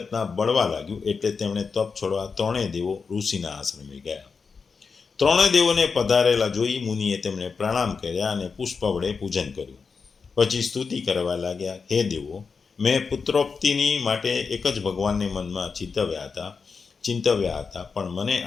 બળવા લાગ્યું, એટલે તેમણે તપ છોડવા 3 દેવો ઋષિના આશ્રમે ગયા. 3 દેવોને પધારેલા જોઈ મુનિએ તેમને પ્રણામ કર્યા અને પુષ્પ વડે પૂજન કર્યું. પછી સ્તુતિ કરવા લાગ્યા: હે દેવો, મેં પુત્રોક્તિની માટે એક જ ભગવાનને મનમાં ચિંતવ્યા હતા, પણ મને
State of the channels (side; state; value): right; quieter; 5.2 dB